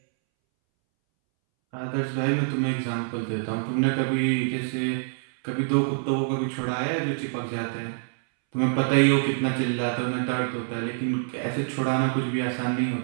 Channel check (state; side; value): silent; left; 61 dB below the other